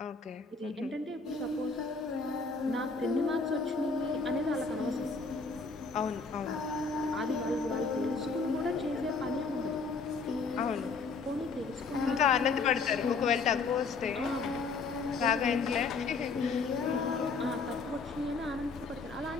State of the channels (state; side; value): quieter; right; 4.4 dB